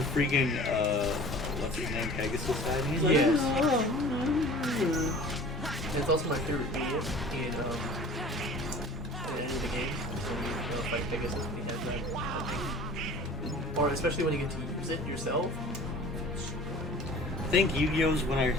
freaking, what's his name, Pegasus died, and he's like, Yes. "Oh." It's also my favorite idiot in the game. So you fight Pegasus when he has that thing. Or especially when you get to use it yourself. I think Yu-Gi-Oh's when I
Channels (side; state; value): both; normal; correlation 0.44